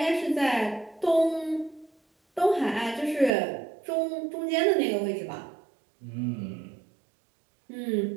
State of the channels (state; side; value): drops out; left; at 3.3 s